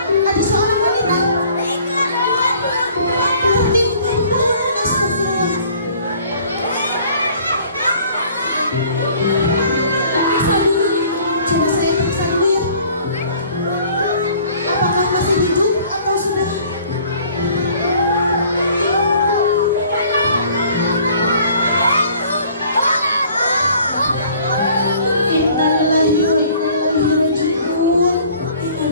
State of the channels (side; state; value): both; inverted; correlation -0.54